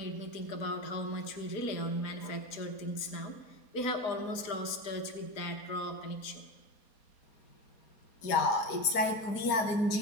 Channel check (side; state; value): right; late; 4.2 ms